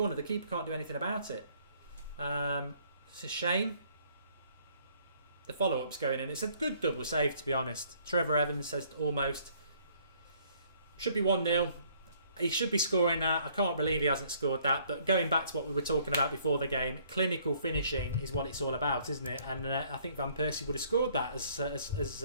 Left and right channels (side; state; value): both; inverted; correlation -0.63